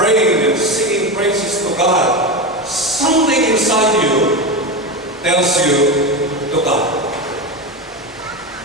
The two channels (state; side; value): normal; both; correlation 0.18